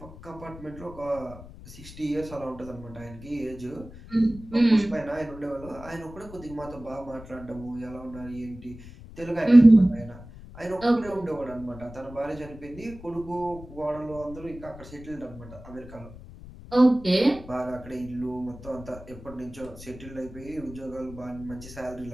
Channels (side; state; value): left; noise; rumble, 16 dB below the sound